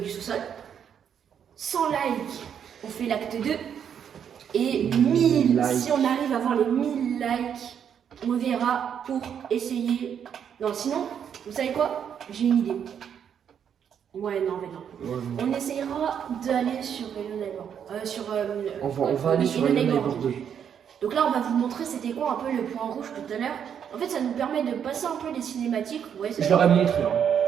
du sous-sol. 100 likes, on fait l'acte 2. Et 1000, likes. si on arrive à avoir les 1000 likes, on verra pour essayer. Non, sinon, vous savez quoi? J'ai une idée. Ouais, non, mais non. Ouais, non. On essayera d'aller sur Hello Neighbor. On va aller sur Hello Neighbor 2. Donc là, on va vous montrer c'était quoi un peu le point rouge tout à l'heure. En fait, ça nous permet de passer un peu les cinématiques. Ouais, Je leur ai montré. Hein.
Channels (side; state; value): left; quieter; 8.3 dB